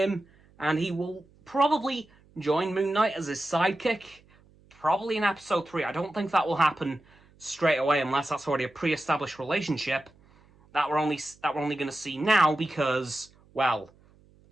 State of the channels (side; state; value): right; noise; hum, 29 dB below the sound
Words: and he will probably join Moon Knight as his sidekick, probably in episode 3. I don't think that will happen straight away unless that's already a pre-established relationship that we're only going to see now, because, well,